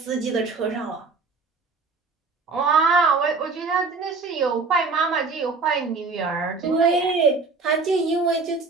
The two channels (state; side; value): quieter; left; 4.2 dB